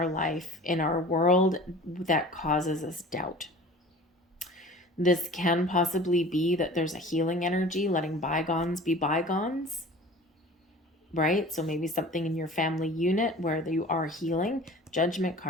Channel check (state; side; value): normal; both; correlation 0.42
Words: life, in our world, that causes us doubt. This can possibly be that there's a healing energy, letting bygones be bygones, right? So maybe something in your family unit where you are healing. Judgment